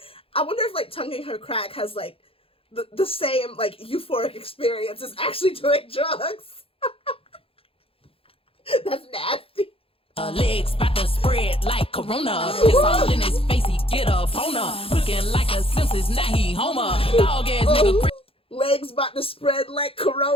if, like, tonguing her crack has, like, the same, like, euphoric experience as actually doing drugs. That's nasty. Legs about to spread like Corona. It's all in his face, he get a boner. Looking like a Simpsons, now he Homer. Dog ass nigga. Legs about to spread like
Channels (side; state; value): right; late; 0.27 ms